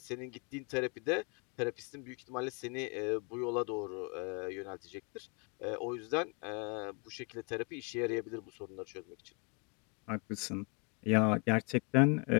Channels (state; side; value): quieter; right; 33.9 dB